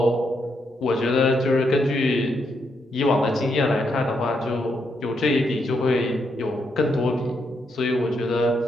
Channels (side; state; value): both; normal; correlation 0.79